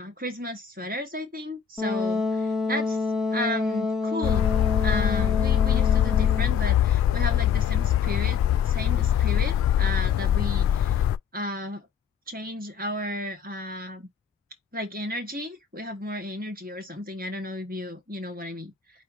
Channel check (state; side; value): quieter; right; 7.0 dB